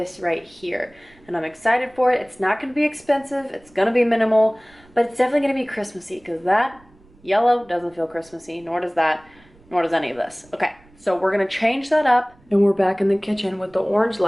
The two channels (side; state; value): right; noise; rumble, 28 dB below the sound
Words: right here. And I'm excited for it. It's not gonna be expensive, it's gonna be minimal, but it's definitely gonna be Christmassy, because that yellow doesn't feel Christmassy, nor does that, nor does any of this. Okay, so we're gonna change that up, and we're back in the kitchen with the orange